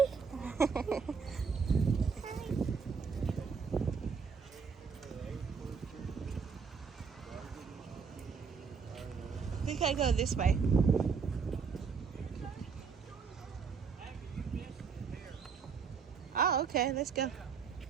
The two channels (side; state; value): left; quieter; 5.7 dB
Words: We can go this way. Oh, okay. Let's go. I